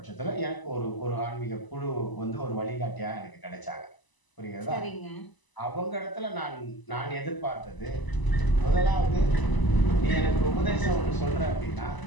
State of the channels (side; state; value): right; late; 1.0 ms